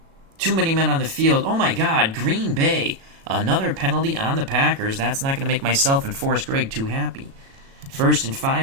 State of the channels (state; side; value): late; left; 36 ms